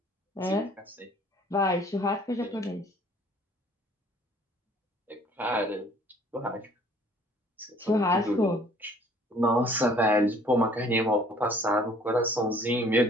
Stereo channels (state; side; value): normal; both; correlation 0.56